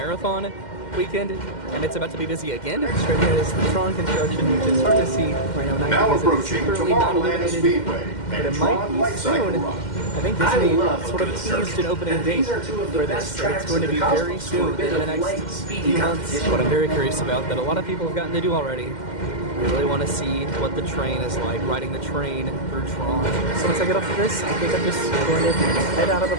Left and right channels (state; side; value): late; right; 2.1 ms